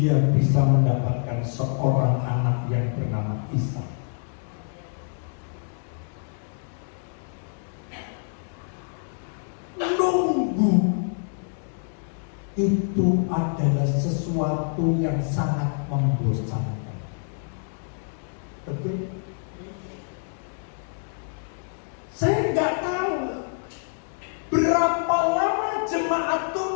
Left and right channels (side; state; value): right; silent; digital silence